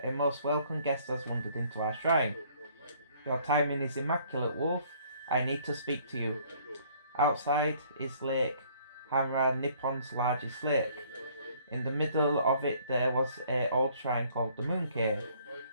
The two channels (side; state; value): both; inverted; correlation -0.60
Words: a most welcome guest has wandered into our shrine. Your timing is immaculate, Wolf. I need to speak to you. Outside is Lake Hamra, Nippon's largest lake. In the middle of it there was an old shrine called the Moon Cave,